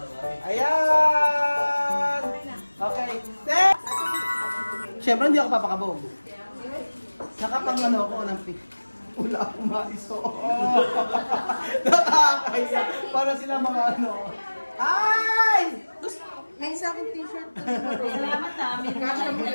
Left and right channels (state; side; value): inverted; both; correlation -1.00